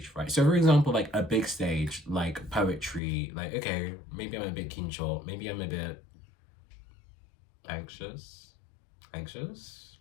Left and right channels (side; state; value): right; drops out; at 3.0 s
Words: fright. So for example, like a big stage, like poetry, like, okay, maybe I'm a bit kincho, maybe I'm a bit anxious,